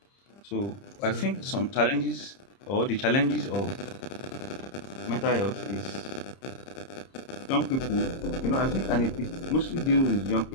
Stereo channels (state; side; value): late; right; 30 ms